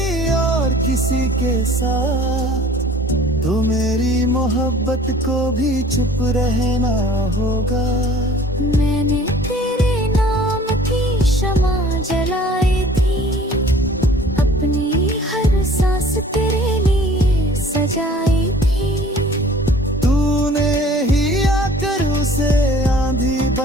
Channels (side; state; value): both; normal; correlation 0.50